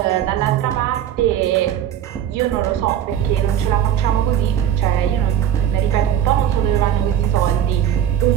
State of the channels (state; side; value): quieter; left; 10.2 dB